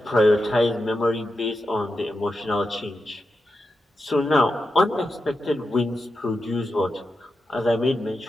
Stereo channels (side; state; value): both; normal; correlation 0.88